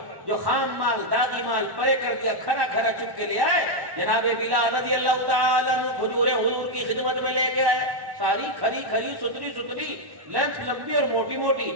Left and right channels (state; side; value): late; left; 1.1 ms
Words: جو خام مال داغی مال پرے کر دیا, کھرا کھرا چپ کے لے آئے. جناب بلال رضی اللہ تعالیٰ عنہ کھجوریں حضور کی خدمت میں لے کے آئے, ساری کھری کھری ستری لینتھ لمبی اور موٹی موٹی.